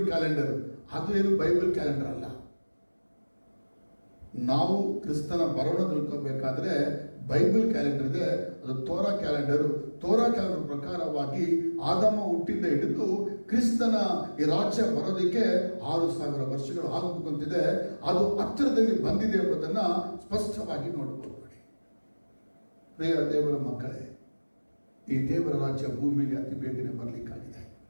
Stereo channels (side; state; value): both; inverted; correlation -1.00